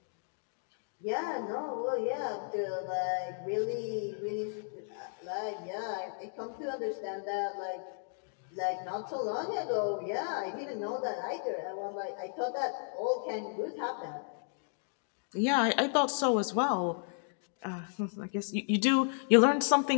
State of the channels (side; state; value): right; silent; digital silence